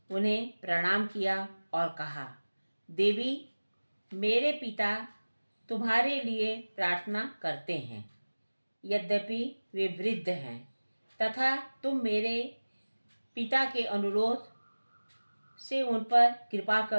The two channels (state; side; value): inverted; both; correlation -1.00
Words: उन्हें प्रणाम किया और कहा, देवी, मेरे पिता तुम्हारे लिए प्रार्थना करते हैं। यद्यपि वे वृद्ध हैं तथा तुम मेरे पिता के अनुरोध से उन पर कृपा